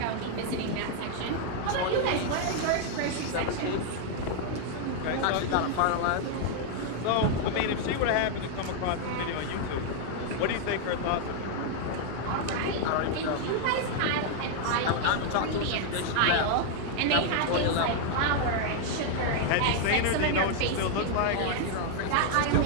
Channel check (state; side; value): different; both; correlation 0.00